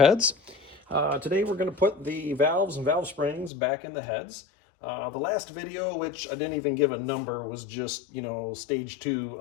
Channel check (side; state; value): right; drops out; at 3.5 s